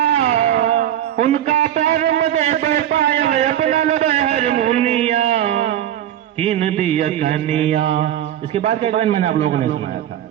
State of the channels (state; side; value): quieter; left; 11.4 dB